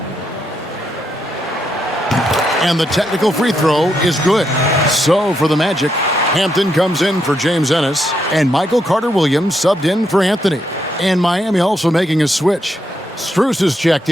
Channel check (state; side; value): normal; both; correlation 0.79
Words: And the technical free throw is good. So for the Magic, Hampton comes in for James Ennis, and Michael Carter-Williams subbed in for Anthony. And Miami also making a switch. Strus is checked